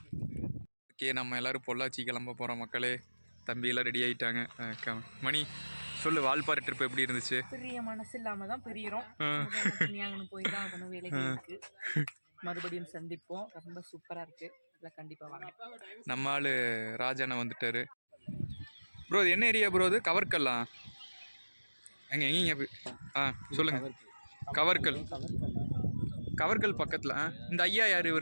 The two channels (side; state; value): both; inverted; correlation -1.00